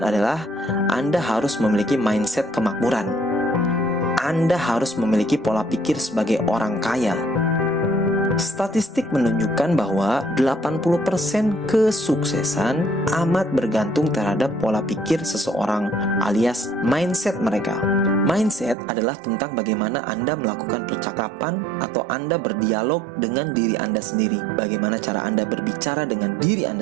adalah Anda harus memiliki mindset kemakmuran. Anda harus memiliki pola pikir sebagai orang kaya. Statistik menunjukkan bahwa 80% kesuksesan amat bergantung terhadap pola pikir seseorang alias mindset mereka. Mindset adalah tentang bagaimana Anda melakukan percakapan atau Anda berdialog dengan diri Anda sendiri. Bagaimana cara Anda berbicara dengan diri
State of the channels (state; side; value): drops out; left; at 18.8 s